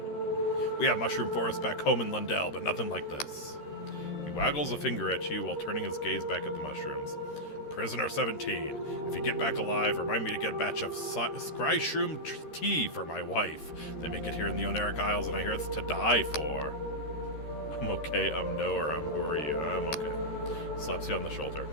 We have mushroom forests back home in Lundell, but nothing like this. He waggles a finger at you while turning his gaze back at the mushrooms. Prisoner 17, if you get back alive, remind me to get a batch of scryshroom tea for my wife. They make it here in the Oneric Isles, and I hear it's to die for. I'm okay, no, or who are you? I'm okay. Slaps you on the shoulder.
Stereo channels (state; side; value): late; right; 13 ms